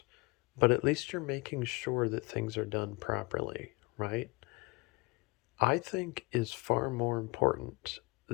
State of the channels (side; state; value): right; quieter; 25.4 dB